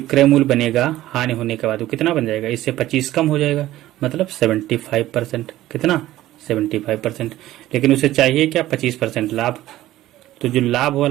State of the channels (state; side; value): quieter; left; 15.0 dB